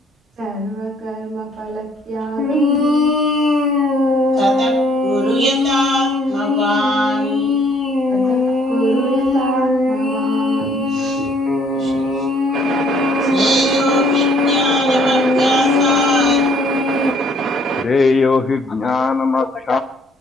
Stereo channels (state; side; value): normal; both; correlation 0.63